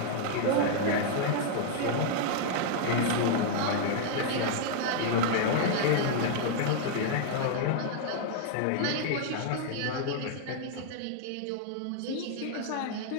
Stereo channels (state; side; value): different; both; correlation 0.00